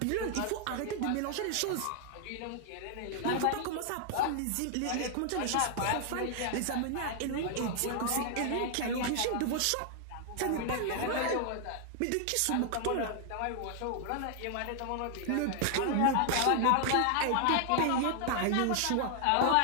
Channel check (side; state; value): both; different; correlation 0.00